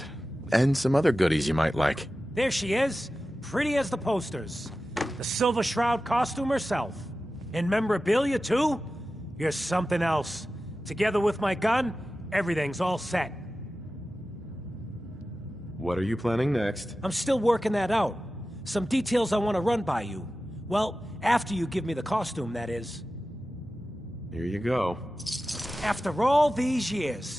And some other goodies you might like. There she is, pretty as the posters. The Silver Shroud costume herself. And memorabilia, too? You're something else. Together with my gun, everything's all set. What are you planning next? I'm still working that out. Some details I want to run by you. Well, after you give me the costume, that is. Here you go. After all these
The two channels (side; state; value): both; normal; correlation 0.94